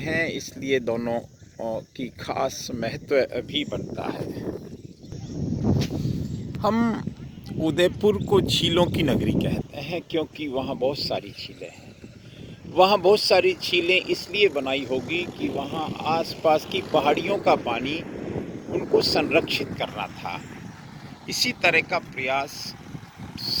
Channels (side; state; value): both; identical; correlation 1.00